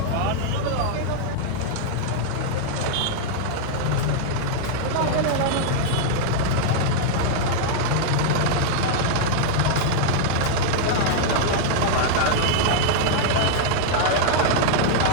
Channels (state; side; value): different; both; correlation -0.01